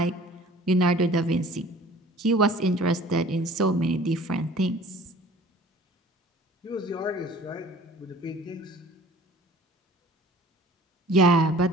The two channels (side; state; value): both; normal; correlation 0.49